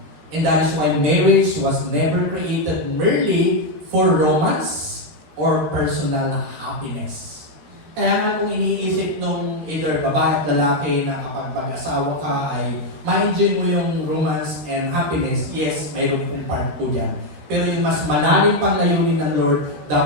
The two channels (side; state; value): left; late; 13 ms